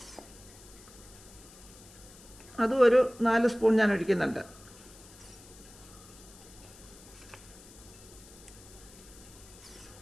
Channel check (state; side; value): noise; left; hiss, 20 dB below the sound